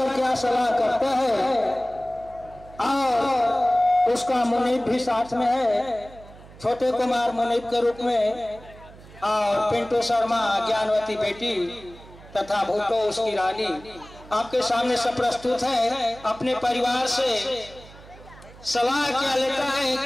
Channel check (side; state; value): right; noise; hum, 20 dB below the sound